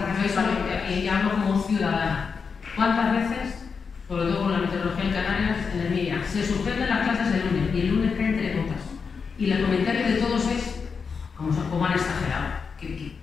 Y ya hablo como ciudadana. ¿Cuántas veces, sobre todo con la meteorología en Canarias, en el MIA, se suspenden las clases el lunes y el lunes caen 3 gotas? Y el comentario de todos es cómo han exagerado,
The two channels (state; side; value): quieter; right; 5.5 dB